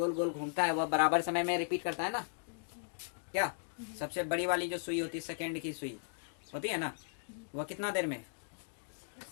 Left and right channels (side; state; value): right; silent; digital silence